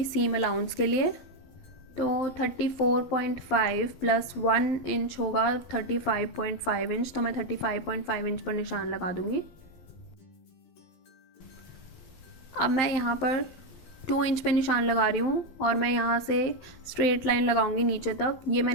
सीम अलाउंस के लिए। तो 34.5 प्लस 1 इंच होगा 35.5 इंच। तो मैं 35.5 इंच पर निशान लगा दूंगी। अब मैं यहाँ पर 2 इंच पे निशान लगा रही हूँ और मैं यहाँ से स्ट्रेट लाइन लगाऊंगी नीचे तक। ये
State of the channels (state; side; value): late; right; 12 ms